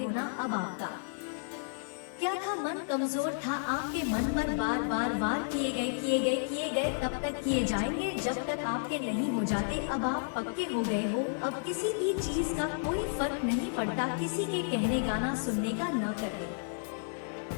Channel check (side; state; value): right; silent; digital silence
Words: ना, अब आपका क्या था, मन कमजोर था, आपके मन पर बार वार किए गए, तब तक किए जाएंगे जब तक आपके नहीं हो जाते। अब आप पक्के हो गए हो, अब किसी भी चीज का कोई फर्क नहीं पड़ता, किसी के कहने का ना सुनने का, ना करने